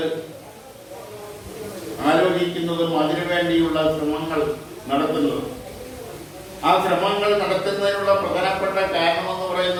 ആലോചിക്കുന്നതും അതിനുവേണ്ടിയുള്ള ശ്രമങ്ങൾ നടത്തുന്നതും. ആ ശ്രമങ്ങൾ നടത്തുന്നതിനുള്ള പ്രധാനപ്പെട്ട കാരണമെന്ന്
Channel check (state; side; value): identical; both; correlation 1.00